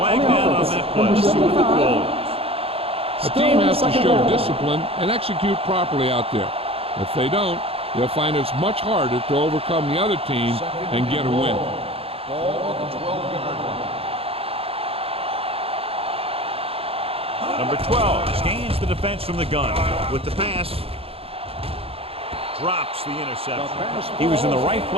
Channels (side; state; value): left; late; 0.28 ms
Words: down on that play. See what the call is. A team has to show discipline and execute properly out there. If they don't, they'll find it's much harder to overcome the other team and get a win. Ball on the 12-yard line. Number 12 scans the defense from the gun with the pass. Drops the interception. He was in the right